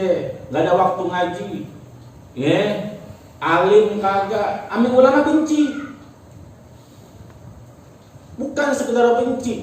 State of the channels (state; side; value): identical; both; correlation 1.00